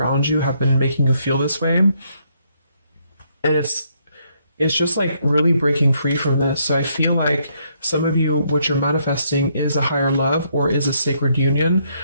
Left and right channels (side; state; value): both; inverted; correlation -0.73